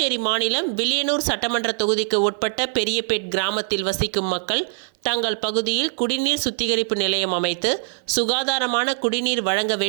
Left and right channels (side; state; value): left; silent; 56 dB below the other